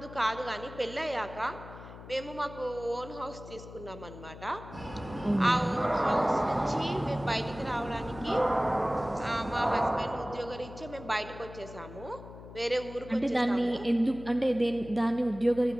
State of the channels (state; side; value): noise; left; hum, 15 dB below the sound